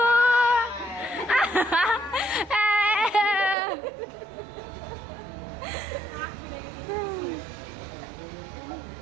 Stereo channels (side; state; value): left; drops out; at 3.6 s